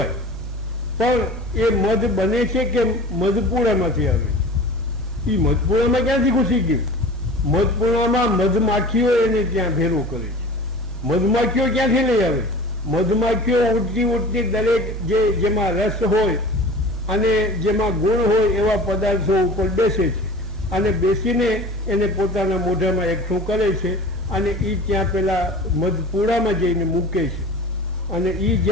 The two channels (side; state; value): both; normal; correlation 0.39